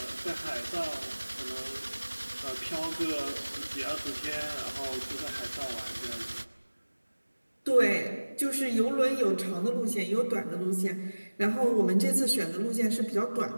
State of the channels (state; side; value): inverted; both; correlation -1.00